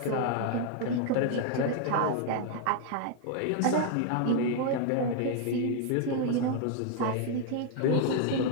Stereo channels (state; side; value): different; both; correlation 0.00